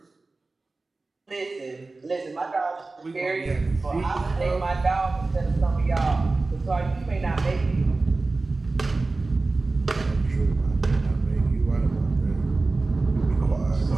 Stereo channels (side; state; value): left; quieter; 3.5 dB